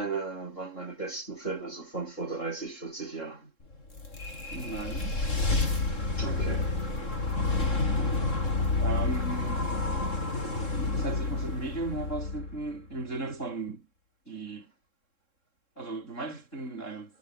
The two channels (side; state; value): right; late; 3.7 ms